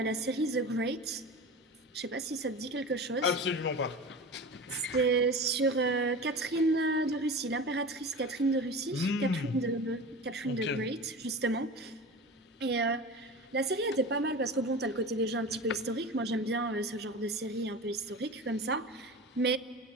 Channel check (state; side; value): normal; both; correlation 0.32